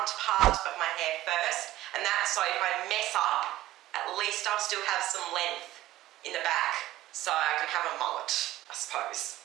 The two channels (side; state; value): left; quieter; 15.4 dB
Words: part of my hair first, and that's so if I mess up, at least I'll still have some length in the back, so I can have a mullet, I suppose.